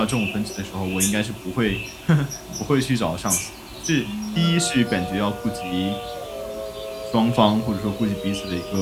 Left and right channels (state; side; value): identical; both; correlation 1.00